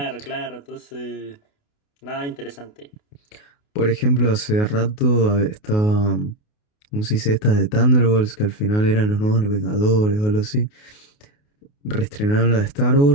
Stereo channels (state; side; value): late; right; 28 ms